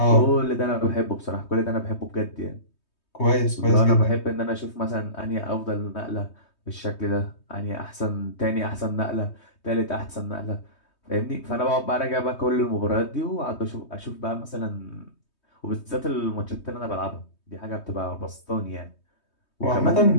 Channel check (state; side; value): late; right; 3.2 ms